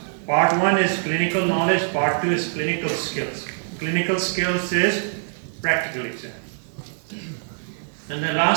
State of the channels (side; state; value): left; silent; 55 dB below the other